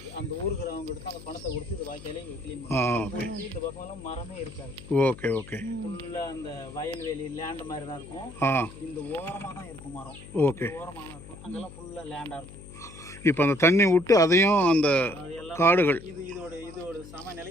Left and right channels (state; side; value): noise; left; hum, 17 dB below the sound